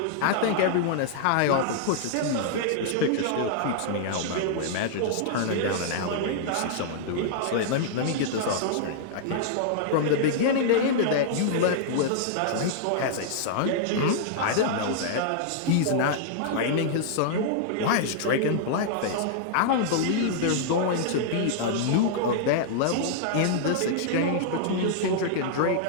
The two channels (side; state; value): both; different; correlation -0.01